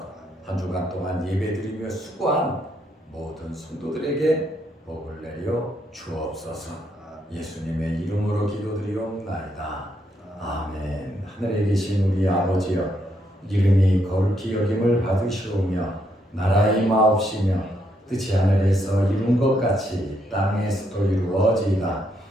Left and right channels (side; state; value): both; normal; correlation 0.75